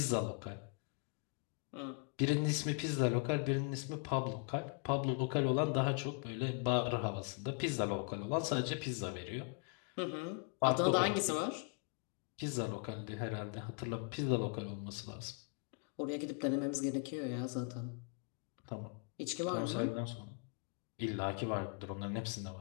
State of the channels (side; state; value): right; quieter; 35.6 dB